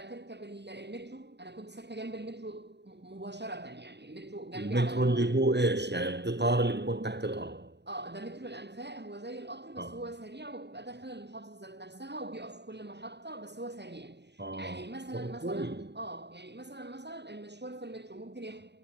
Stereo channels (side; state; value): left; late; 0.50 ms